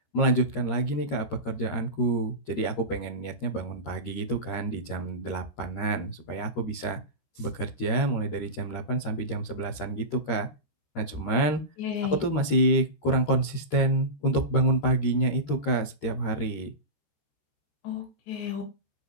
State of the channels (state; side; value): late; right; 13 ms